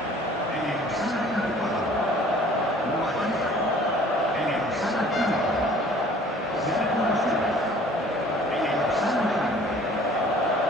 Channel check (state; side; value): normal; both; correlation 0.52